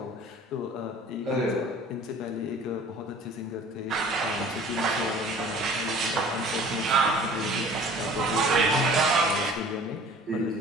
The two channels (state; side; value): normal; both; correlation 0.48